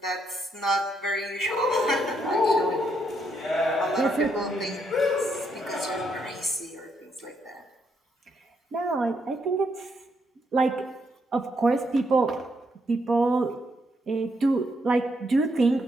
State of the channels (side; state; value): both; normal; correlation 0.76